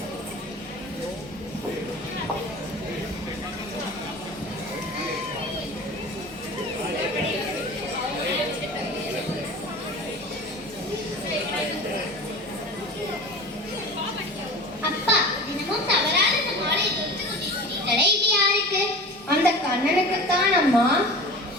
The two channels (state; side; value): normal; both; correlation 0.36